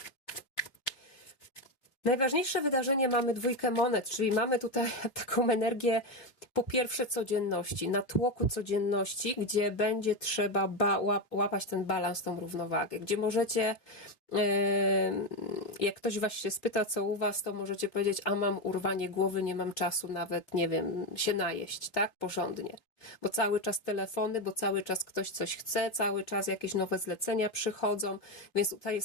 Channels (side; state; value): right; late; 3.6 ms